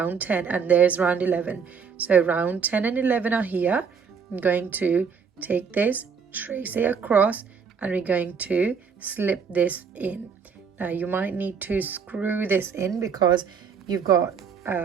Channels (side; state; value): left; quieter; 6.2 dB